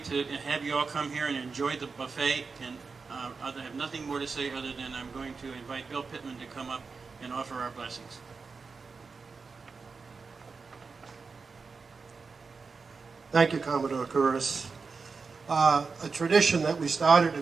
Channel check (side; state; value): left; quieter; 4.7 dB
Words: have you all come here and enjoy the buffet, and I have nothing more to say other than I'm going to invite Bill Pittman to come up and offer our blessings. Thank you, Commodore Curris. A tradition that we started a